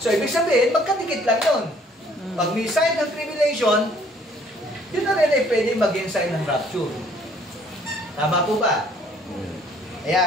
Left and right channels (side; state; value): both; normal; correlation 0.60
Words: So, ibig sabihin, magkadikit lang yun. Pag may sign ng tribulation, yun na rin ay pwede maging sign ng rapture. Tama po ba? Kaya